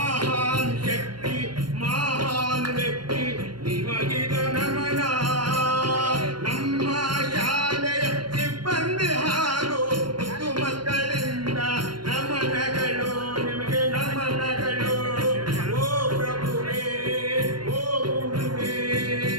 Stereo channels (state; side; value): late; left; 0.72 ms